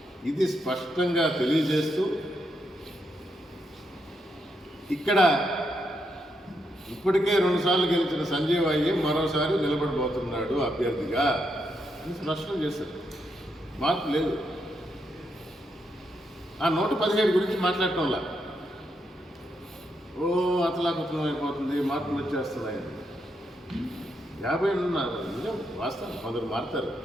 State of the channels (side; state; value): both; normal; correlation 0.80